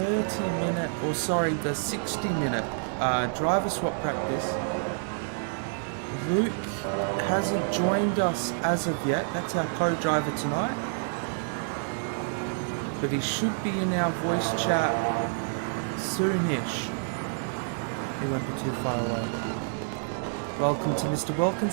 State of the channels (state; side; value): silent; left; 58 dB below the other